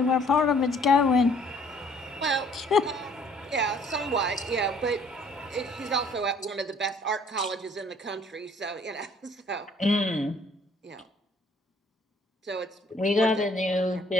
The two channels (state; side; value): normal; both; correlation 0.59